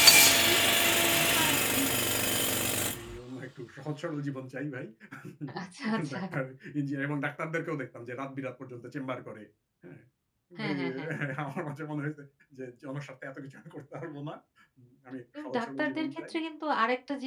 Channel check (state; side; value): identical; both; correlation 1.00